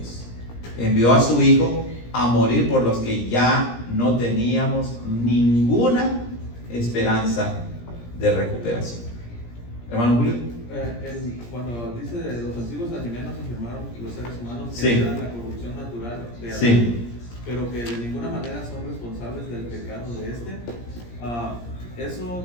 Envió a su Hijo a morir por los que ya no teníamos ninguna esperanza de recuperación. Hermano Julio. Cuando dice de los antiguos alienígenas afirmaron los seres humanos que Sí. eran la corrupción natural de Adán, Sí. pero que de ninguna manera son responsables del pecado de eso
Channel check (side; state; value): right; late; 17 ms